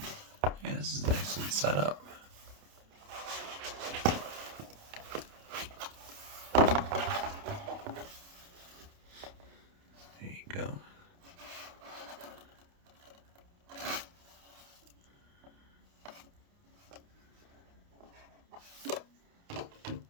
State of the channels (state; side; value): late; left; 29 ms